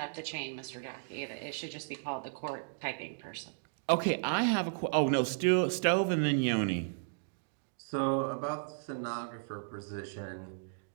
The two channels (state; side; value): silent; left; digital silence